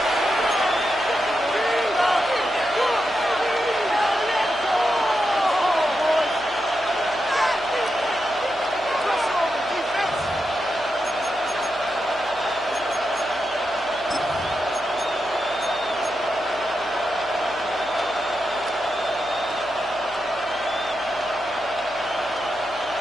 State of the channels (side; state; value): left; noise; hum, 24 dB below the sound